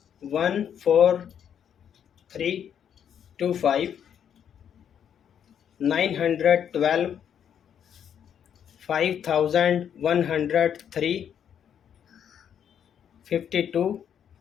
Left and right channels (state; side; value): quieter; right; 8.7 dB